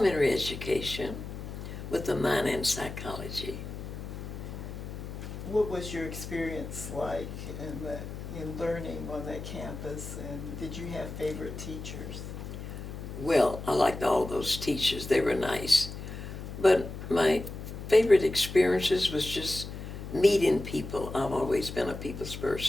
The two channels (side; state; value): left; noise; hum, 9 dB below the sound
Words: education with a minor in psychology. What was your experience like in learning on that campus, and did you have favorite teachers? Well, I liked all those teachers. They were nice. But my favorite experiences was just meeting people. I've always been a people's